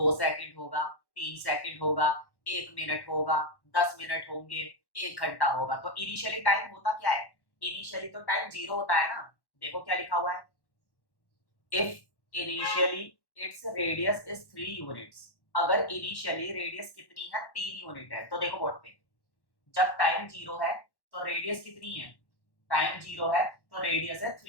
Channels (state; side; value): late; right; 1.1 ms